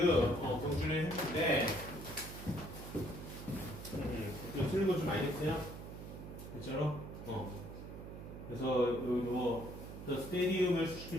경준이 했는데 틀린 거 좀 많이 했어요? 진짜로? 그래서 the stadium을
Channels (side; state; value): right; noise; hum, 11 dB below the sound